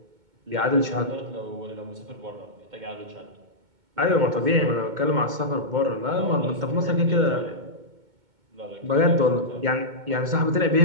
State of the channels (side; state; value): left; late; 2.2 ms